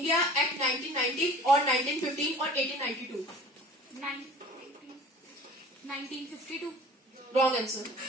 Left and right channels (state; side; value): normal; both; correlation 0.44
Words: Act 1990 or 1915 or 1892. 1952. Wrong answer.